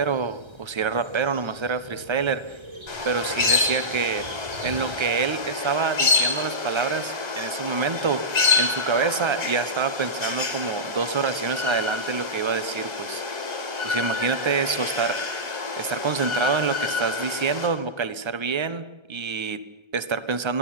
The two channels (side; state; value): left; late; 1.3 ms